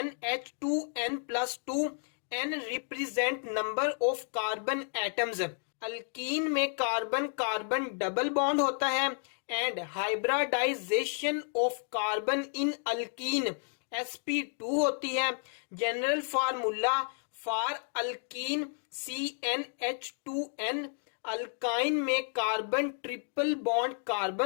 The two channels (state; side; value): silent; right; 57 dB below the other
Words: n represent number of carbon atoms. Alkene में carbon carbon double bond होता है and hybridisation of carbon in alkene sp2 होती है. General formula for alkene CnH2n. Alkyne में carbon triple bond